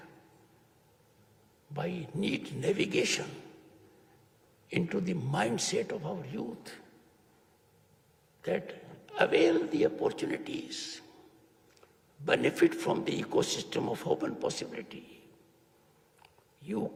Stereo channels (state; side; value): identical; both; correlation 1.00